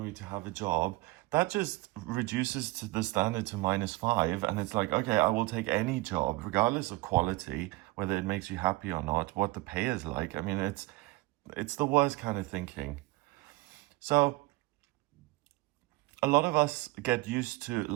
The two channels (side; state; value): left; quieter; 20.6 dB